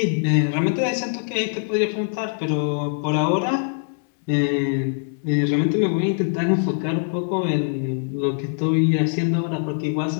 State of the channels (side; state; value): right; silent; digital silence